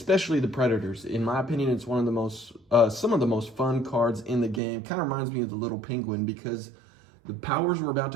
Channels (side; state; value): left; drops out; at 4.6 s